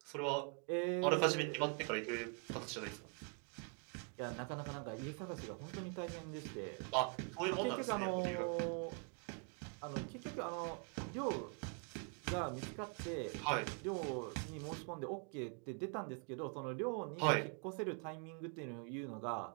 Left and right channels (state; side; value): quieter; left; 38.6 dB